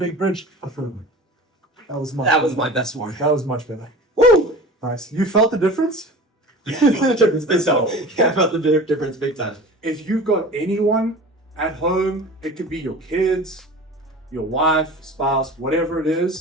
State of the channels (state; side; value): normal; both; correlation 0.38